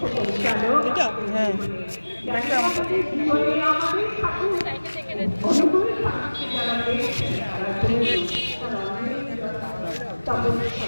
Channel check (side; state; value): both; inverted; correlation -1.00